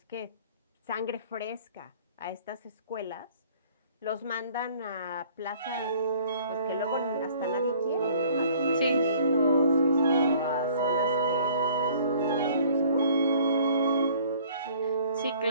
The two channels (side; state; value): both; inverted; correlation -0.54